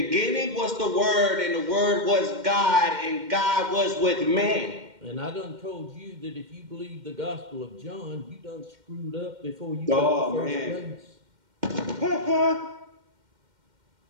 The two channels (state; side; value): late; left; 2.1 ms